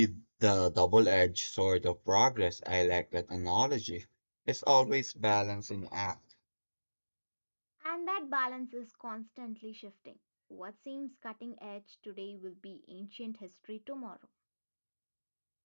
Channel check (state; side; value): inverted; both; correlation -1.00